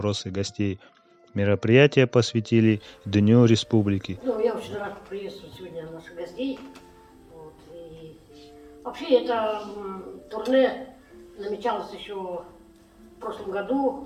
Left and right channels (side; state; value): both; identical; correlation 1.00